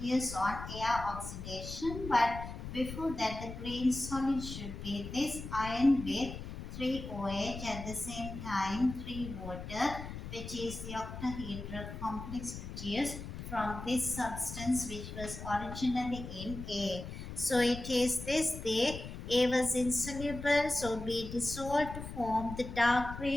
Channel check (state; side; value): noise; left; rumble, 9 dB below the sound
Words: on air oxidation, but before that the green solid should be this iron with 3 OH at the same time 3 water, which is the octahedral complex produced from this substance which was originally in A. So it is this the A was insoluble, so B dissolved to form the dark